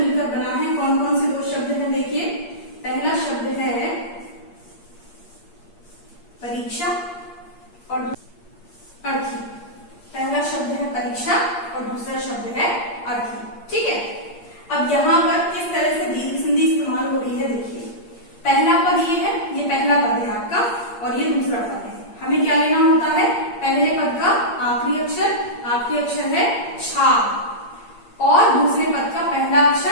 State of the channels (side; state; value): right; late; 8.6 ms